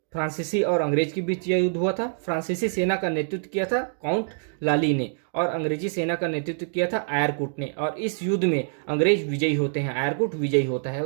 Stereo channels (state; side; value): silent; left; digital silence